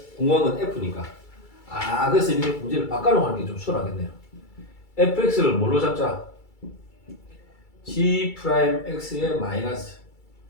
궁금한 건 F니까. 그래서 이렇게 문제를 바꿔놓고 하는 게 좀 수월하겠네요. fx를 뭘로 잡자? g 프라임 x의 마이너스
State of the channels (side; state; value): right; late; 2.3 ms